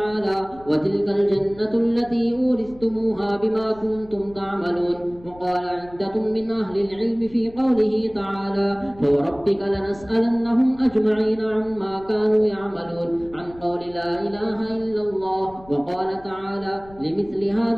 وتلك الجنة التي أورثتموها بما كنتم تعملون. وقال عدة من أهل العلم في قوله تعالى: فوربك لنسألنهم أجمعين عما كانوا يعملون، عن قول لا إله إلا الله. وقال تعالى: لمثل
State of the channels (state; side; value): noise; left; rumble, 22 dB below the sound